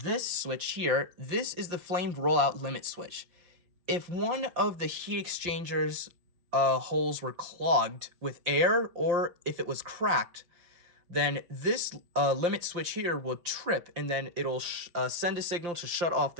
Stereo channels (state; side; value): late; left; 5.7 ms